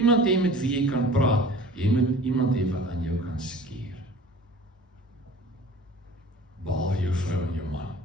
hê met wie jy kan praat, jy moet iemand hê wat aan jou kan skeer. Behalwe jou vrou en jou man,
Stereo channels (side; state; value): both; normal; correlation 0.44